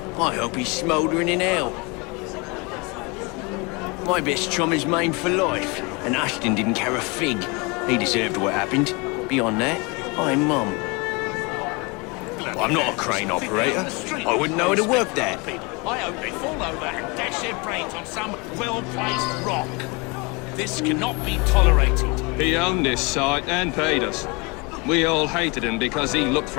I hope he's smouldering in hell. My best chum is maimed for life, and Ashton didn't care a fig. He deserved what happened. Beyond that, I'm mum. I'm not a crane operator. I wouldn't know how to work that. I hope they fall over and dash their brains on some well-placed rock. This cannot be tolerated. He owned this site and paid us. We all hated him because he looked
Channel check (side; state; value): right; quieter; 28.5 dB